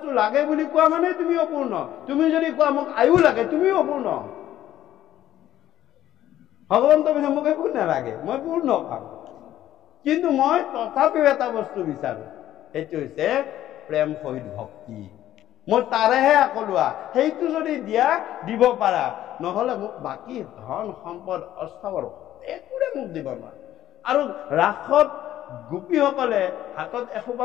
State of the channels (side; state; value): right; quieter; 12.8 dB